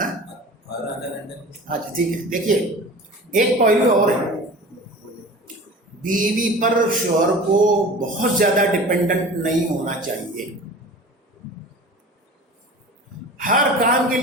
اچھا ٹھیک ہے. دیکھیے ایک پہلو اور ہے، بیوی پر شوہر کو بہت زیادہ ڈپینڈنٹ نہیں ہونا چاہیے، ہر کام کے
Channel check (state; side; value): normal; both; correlation 0.38